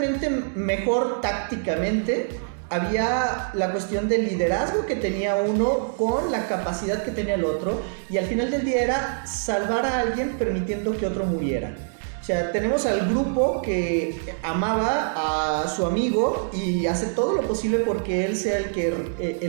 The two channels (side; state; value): left; silent; digital silence